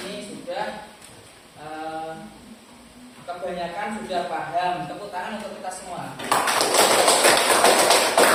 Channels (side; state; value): both; identical; correlation 1.00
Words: sudah kebanyakan sudah paham. Tepuk tangan untuk kita semua.